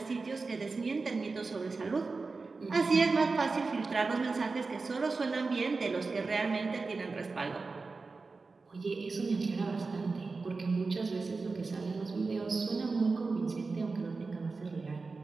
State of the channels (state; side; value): quieter; left; 4.1 dB